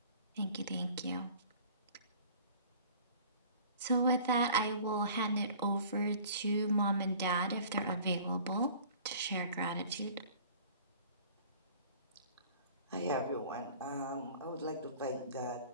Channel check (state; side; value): inverted; both; correlation -0.48